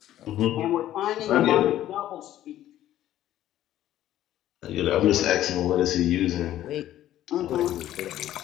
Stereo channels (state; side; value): quieter; right; 12.9 dB